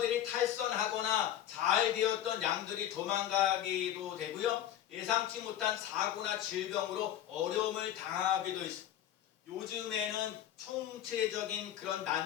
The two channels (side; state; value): right; quieter; 11.4 dB